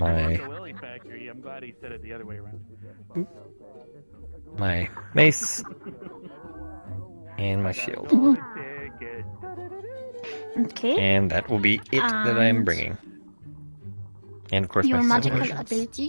my mace and my shield. Okay. And that will be it that I'm bringing. And of course Your my magical potions.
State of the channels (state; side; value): inverted; both; correlation -1.00